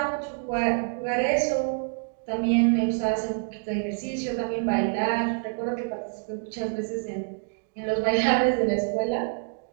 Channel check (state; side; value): silent; left; 60 dB below the other